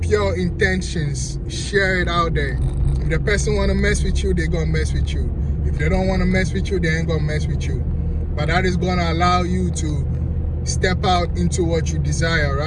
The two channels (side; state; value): both; identical; correlation 1.00